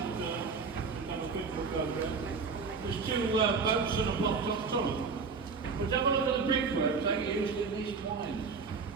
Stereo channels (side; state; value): left; quieter; 5.0 dB